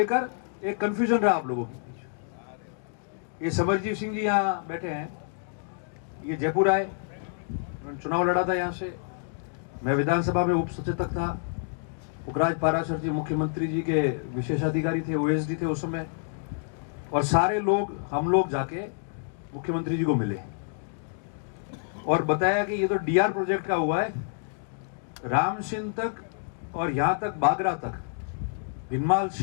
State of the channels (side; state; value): right; silent; digital silence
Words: एक कंफ्यूजन रहा आप लोगों के बीच। ये समरजीत सिंह जी यहाँ बैठे हैं, ये जयपुर आए, चुनाव लड़ा था यहाँ से, मैं विधानसभा में उप सचेतक था। पुखराज पाराशर जी मुख्यमंत्री जी के विशेषाधिकारी थे, ओएसडी थे उस समय, और सारे लोग, हम लोग जाके मुख्यमंत्री जी को मिले और बताया कि ये तो डीआर प्रोजेक्ट का हुआ है, रामसिंह तक और यहाँ तक बागरा तक, भिनमाल